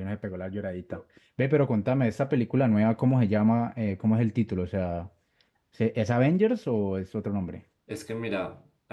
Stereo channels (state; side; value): identical; both; correlation 1.00